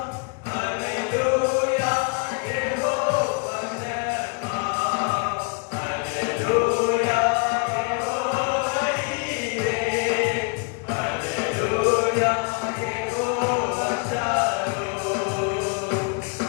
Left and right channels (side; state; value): right; quieter; 37.0 dB